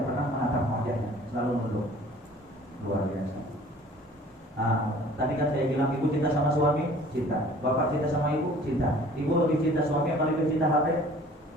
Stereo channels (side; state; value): both; normal; correlation 0.50